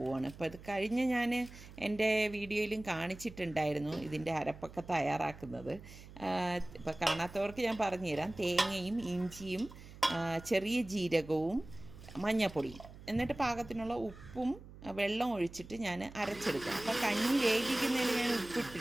അപ്പോൾ ഇത് കഴിഞ്ഞ് ഞാൻ എൻ്റെ വീഡിയോയിലും കാണിച്ചിട്ടുണ്ടായിരുന്നു ഇതിൻ്റെ അരപ്പൊക്കെ തയ്യാറാക്കുന്നത്. ഇപ്പോൾ കാണാത്തവർക്ക് ഞാൻ പറഞ്ഞുതരാം. തേങ്ങയും ഇഞ്ചിയും ചെറിയ ജീരകവും മഞ്ഞൾപ്പൊടിയും, എന്നിട്ട് പാകത്തിനുള്ള ഉപ്പും വെള്ളം ഒഴിച്ചിട്ട് ഞാൻ അരച്ചെടുക്കും. അപ്പോൾ കഞ്ഞി വേവിക്കുന്നതിൽ ഞാൻ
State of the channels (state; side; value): noise; right; hum, 17 dB below the sound